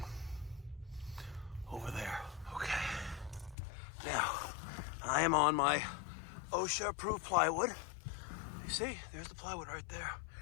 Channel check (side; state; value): right; drops out; at 3.6 s